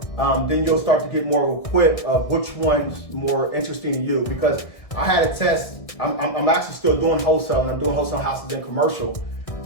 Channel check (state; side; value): late; right; 1.6 ms